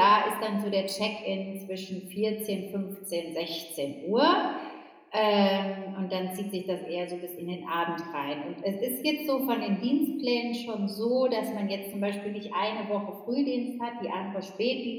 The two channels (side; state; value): both; identical; correlation 1.00